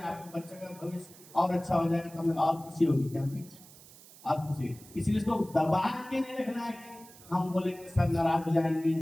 बच्चे का भविष्य और अच्छा हो जाएगा तो हमें और खुशी होगी, क्या होगी और खुशी। इसलिए इसको दबा के नहीं रखना है कि हम बोलेंगे सर नाराज हो जाएंगे,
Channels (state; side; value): noise; right; hiss, 21 dB below the sound